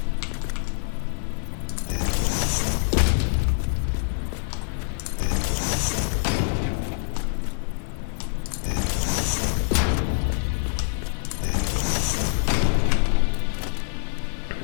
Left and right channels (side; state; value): right; silent; 62 dB below the other